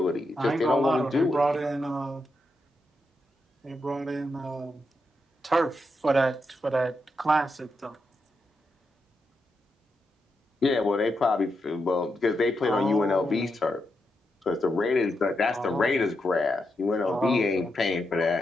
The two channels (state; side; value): normal; both; correlation 0.84